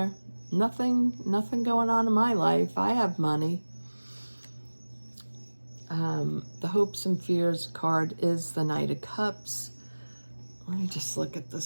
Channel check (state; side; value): inverted; both; correlation -1.00